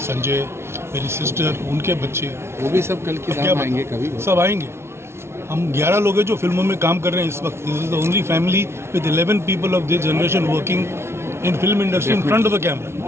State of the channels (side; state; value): left; late; 0.12 ms